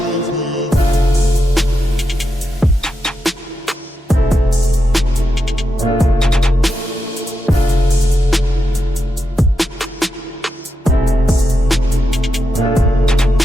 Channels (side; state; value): both; normal; correlation 0.86